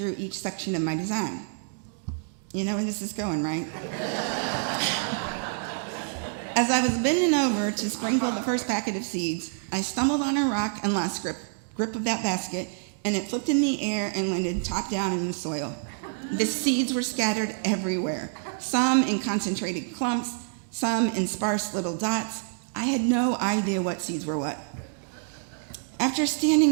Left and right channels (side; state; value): left; silent; 60 dB below the other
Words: each section of my design. You know where this is going, right? As I was bending over to sprinkle the first packet of seeds, I stumbled on a rock and lost grip of that basket, and it flipped in the air and landed top down in the soil. The seeds were scattered everywhere, some in concentrated clumps, some in sparse little dots. I had no idea what seeds were what. After